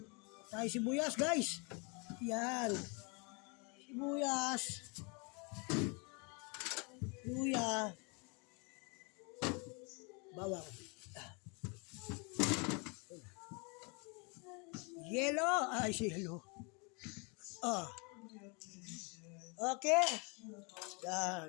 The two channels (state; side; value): quieter; right; 32.6 dB